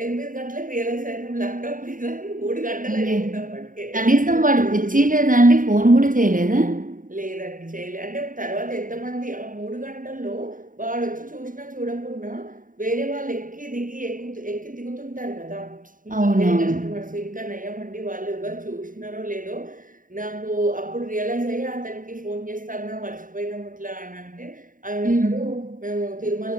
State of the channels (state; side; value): late; left; 0.39 ms